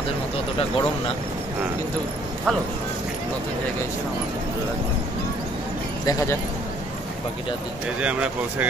মতো অতটা গরম না, কিন্তু ভালো। নতুন জায়গায় এসে আমার খুব ভালো লাগছে। দেখা যাক বাকিটা দিন। এই যে আমরা পৌঁছে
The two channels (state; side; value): normal; both; correlation 0.61